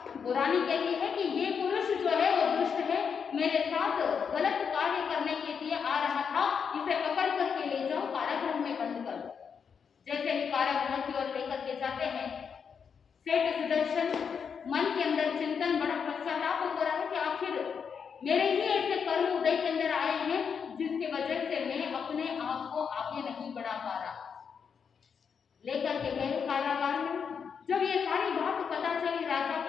वो रानी कहती है कि ये पुरुष जो है वो दुष्ट है, मेरे साथ गलत कार्य करने के लिए आ रहा था, इसे पकड़ करके ले जाओ, कारागृह में बंद कर दो। जैसे ही कारागृह की ओर लेकर के जाते हैं, सेठ सुदर्शन मन के अंदर चिंतन, बड़ा पश्चाताप हो रहा है कि आखिर मेरे ही ऐसे कर्म उदय के अंदर आए हैं जिसकी वजह से मैं अपने आप को आगे नहीं बढ़ा पा रहा। लेकर के गए कारागार में। जब ये सारी बात पता चली राजा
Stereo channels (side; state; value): right; quieter; 6.6 dB